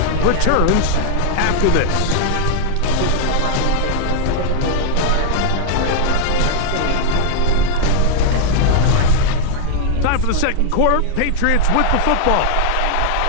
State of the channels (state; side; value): different; both; correlation -0.01